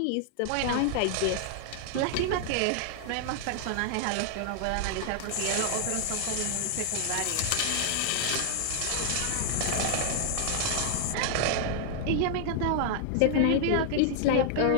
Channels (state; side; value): different; both; correlation 0.00